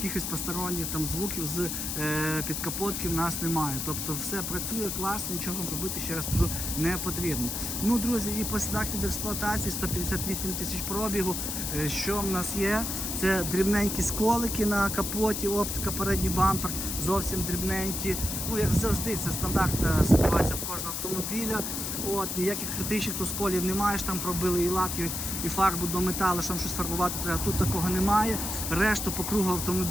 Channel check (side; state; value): left; noise; hiss, 3 dB below the sound